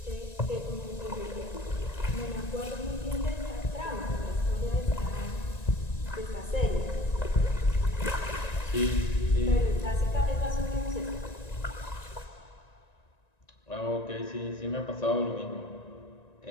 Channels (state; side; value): late; right; 1.9 ms